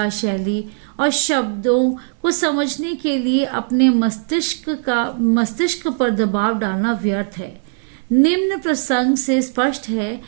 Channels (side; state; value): left; silent; 63 dB below the other